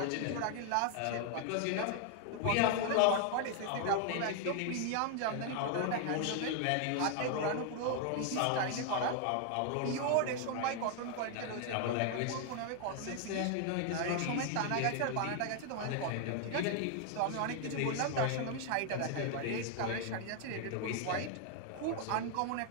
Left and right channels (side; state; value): both; different; correlation 0.00